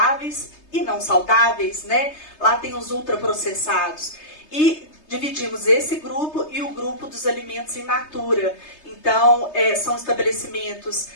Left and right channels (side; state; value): right; late; 3.3 ms